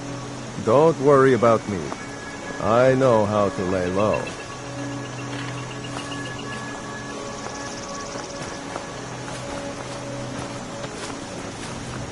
Don't worry about me. I know how to lay low.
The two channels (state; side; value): identical; both; correlation 1.00